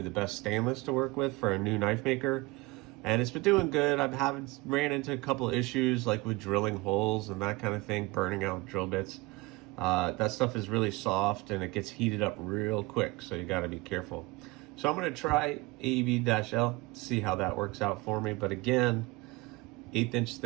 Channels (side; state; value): left; quieter; 23.4 dB